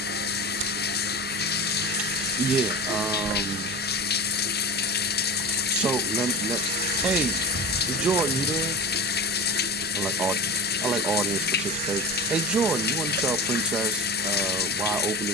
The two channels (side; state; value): both; normal; correlation 0.29